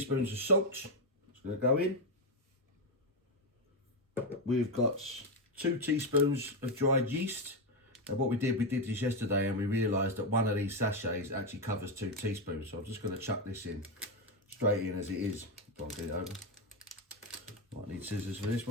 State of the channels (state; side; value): normal; both; correlation 0.07